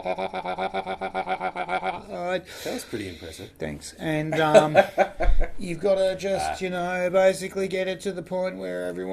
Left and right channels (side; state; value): both; identical; correlation 1.00